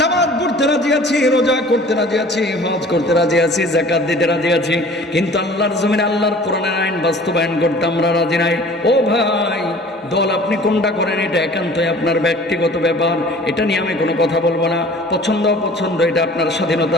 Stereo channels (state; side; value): normal; both; correlation 0.47